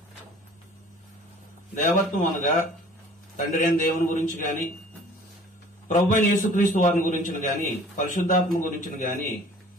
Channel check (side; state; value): both; normal; correlation 0.50